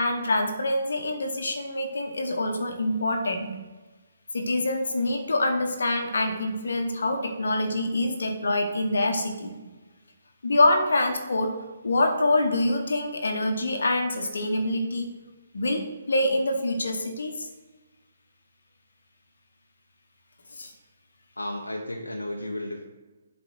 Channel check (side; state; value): both; inverted; correlation -0.84